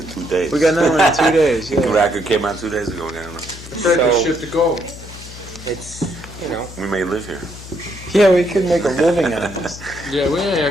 2 days. We got another one in 2 days. The Yeah. record came out 2 days ago. We got another. Ready to So- ship to go. It's, you know, We may live here. Yeah, we could make a living out of this. Yeah, we ain't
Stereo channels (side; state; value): left; noise; hum, 15 dB below the sound